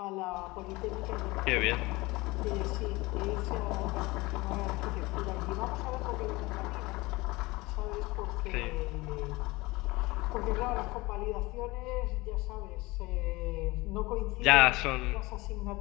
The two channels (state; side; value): quieter; right; 22.0 dB